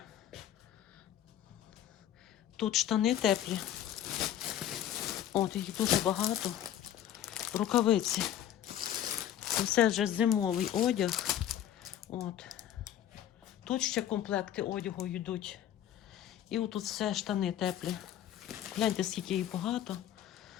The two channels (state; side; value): quieter; right; 11.0 dB